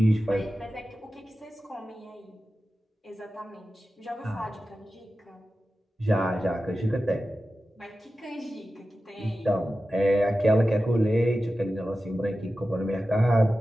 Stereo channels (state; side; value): normal; both; correlation 0.94